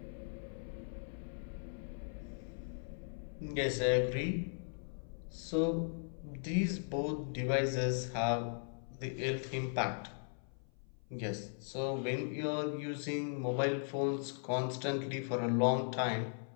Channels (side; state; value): right; silent; 52 dB below the other